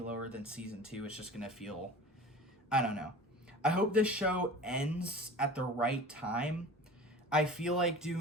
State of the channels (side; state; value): both; normal; correlation 0.39